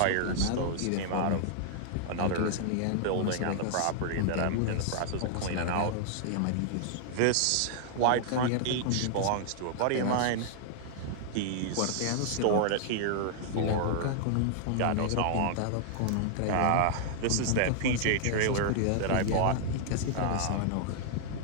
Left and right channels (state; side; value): different; both; correlation -0.01